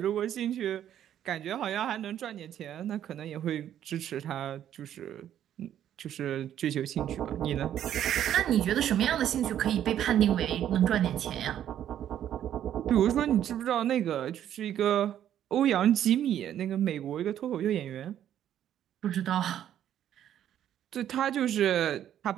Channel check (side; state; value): left; quieter; 10.7 dB